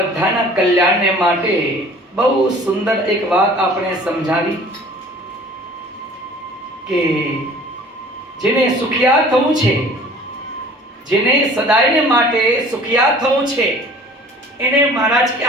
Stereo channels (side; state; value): both; normal; correlation 0.49